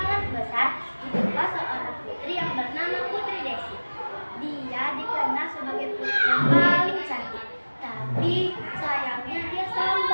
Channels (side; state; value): both; inverted; correlation -1.00